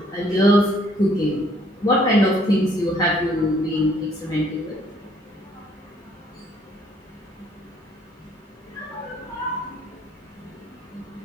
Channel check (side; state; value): both; normal; correlation 0.64